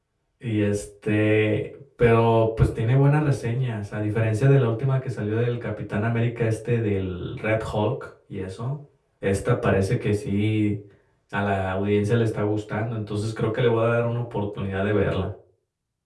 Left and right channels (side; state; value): both; identical; correlation 1.00